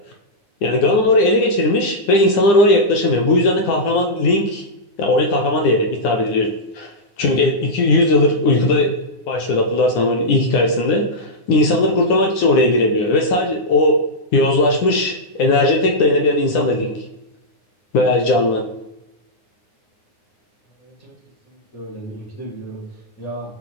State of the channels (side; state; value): right; late; 9.9 ms